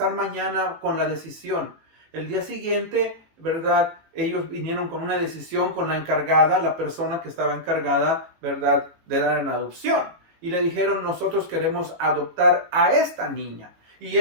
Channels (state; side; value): late; left; 18 ms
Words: mañana con la decisión. El día siguiente, ¿verdad?, ellos vinieron con una decisión con la encargada, la persona que estaba encargada, ¿verdad?, de dar en adopción. Y le dijeron, nosotros queremos adoptar a esta niña. Y